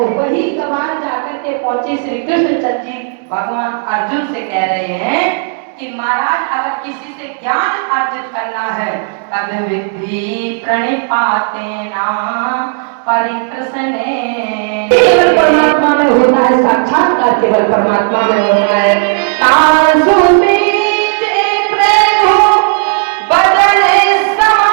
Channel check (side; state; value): left; silent; 58 dB below the other